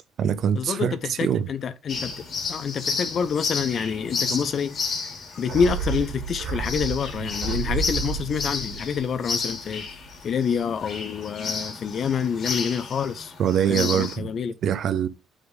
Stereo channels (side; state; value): both; normal; correlation 0.65